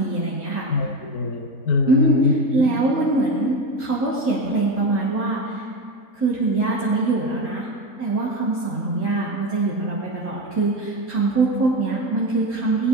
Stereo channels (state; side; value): late; right; 3.9 ms